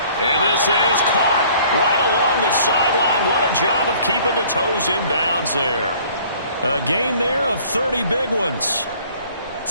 And this is caught right along the sideline. What a job of keeping the toes in bounds there. A gain there of 30 big ones.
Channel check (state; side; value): inverted; both; correlation -0.54